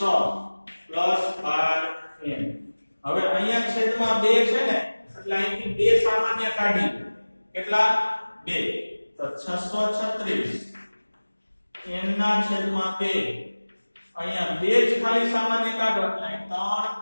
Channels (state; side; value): inverted; both; correlation -1.00